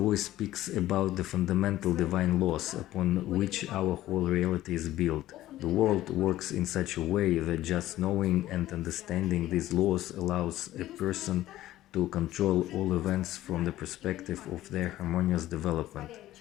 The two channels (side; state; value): right; quieter; 14.7 dB